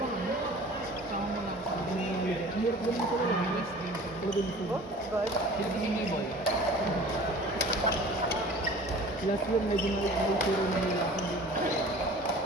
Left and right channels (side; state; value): both; normal; correlation 0.44